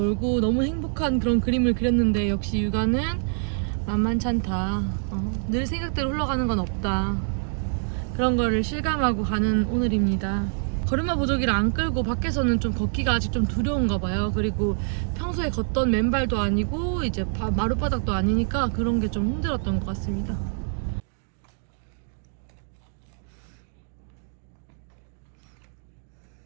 너무 행복한 그런 그림을 그렸는데 역시 육아는 만만찮다. 늘 생각대로 흘러가는 건 없다. 그런 거를 실감하고 가는 오늘입니다. 걸음마 보조기를 안 끌고 밖에서는 좀 걷기가 아직 좀 두려운가 봐요. 그리고 평소에 걷던 맨발도 아니고 이제 마룻바닥도 아니니까 그런 게 좀 힘들었던 것 같습니다.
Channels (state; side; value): silent; left; digital silence